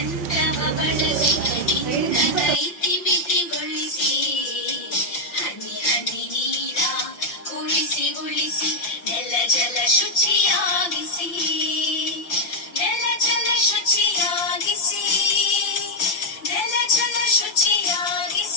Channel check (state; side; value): late; right; 5.8 ms